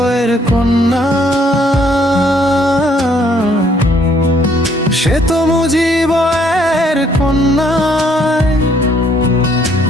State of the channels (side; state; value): both; normal; correlation 0.66